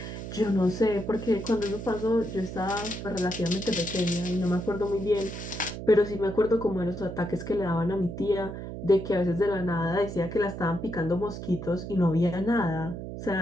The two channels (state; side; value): noise; right; hum, 8 dB below the sound